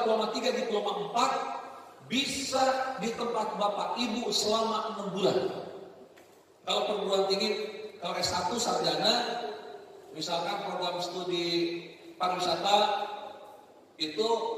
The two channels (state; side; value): identical; both; correlation 1.00